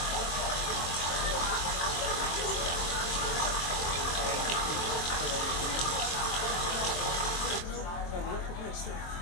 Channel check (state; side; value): late; right; 23 ms